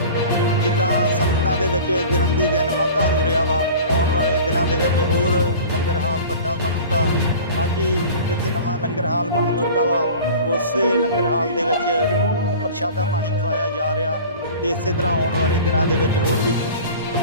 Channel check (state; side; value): inverted; both; correlation -0.40